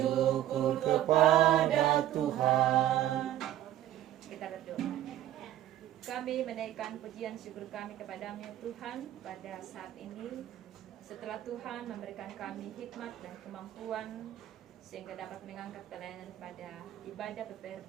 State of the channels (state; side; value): quieter; left; 12.7 dB